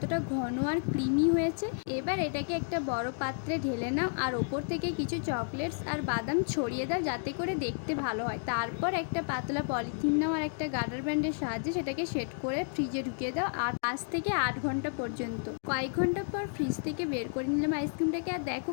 ঘন আর ক্রিমি হয়েছে। এবার এটাকে একটা বড় পাত্রে ঢেলে নাও, আর ওপর থেকে কিছু চকলেটস আর বাদাম ছড়িয়ে দাও যাতে করে দেখতে ভালো হয়। তারপর একটা পাতলা পলিথিন নাও আর একটা গার্ডার ব্যান্ডের সাহায্যে সেটাকে সেট করে ফ্রিজে ঢুকিয়ে দাও, আর 5 থেকে 8 ঘন্টা পর্যন্ত। কয়েক ঘন্টা পর ফ্রিজ থেকে বের করে নিলাম আইসক্রিমটাকে, আর দেখো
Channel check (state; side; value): silent; right; digital silence